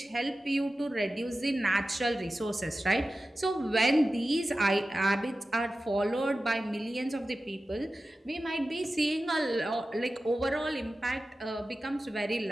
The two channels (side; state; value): both; normal; correlation 0.94